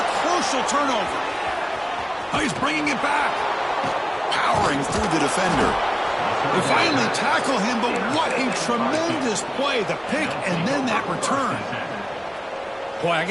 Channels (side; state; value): both; identical; correlation 1.00